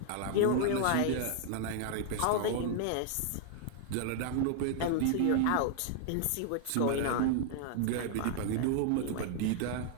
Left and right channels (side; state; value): both; different; correlation 0.00